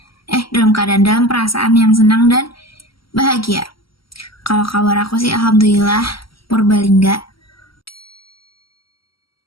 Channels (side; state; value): right; late; 0.75 ms